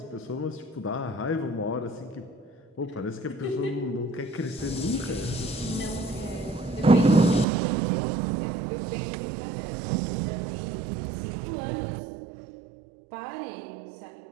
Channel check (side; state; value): left; drops out; at 7.5 s